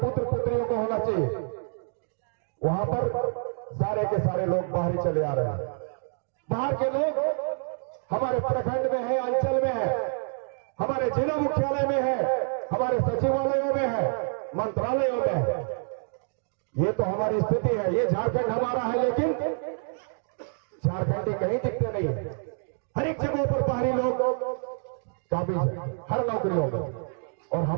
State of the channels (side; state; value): left; silent; 60 dB below the other